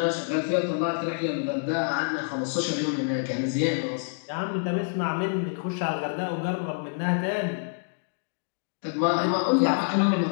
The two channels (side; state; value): right; silent; digital silence